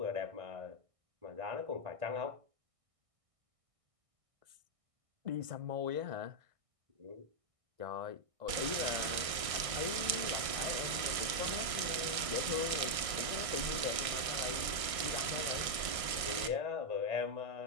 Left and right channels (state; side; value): late; left; 1.6 ms